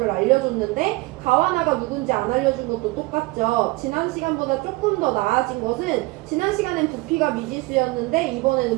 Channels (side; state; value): left; quieter; 22.8 dB